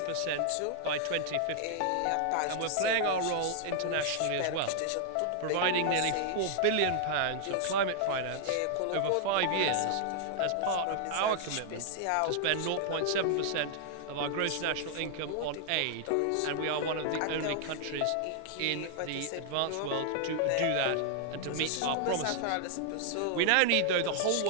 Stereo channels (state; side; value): different; both; correlation -0.01